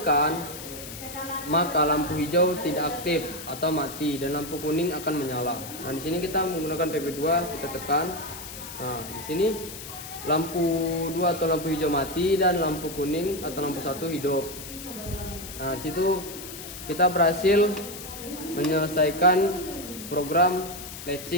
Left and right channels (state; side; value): noise; left; hiss, 11 dB below the sound